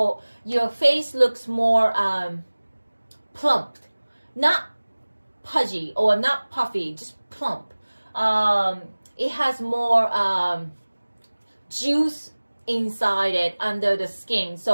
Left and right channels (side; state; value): both; inverted; correlation -1.00